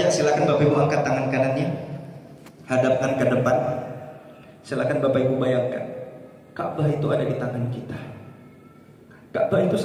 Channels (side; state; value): both; identical; correlation 1.00